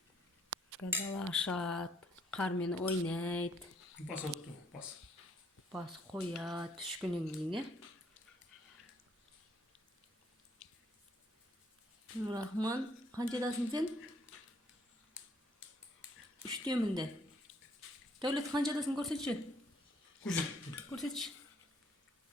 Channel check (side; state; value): both; normal; correlation 0.67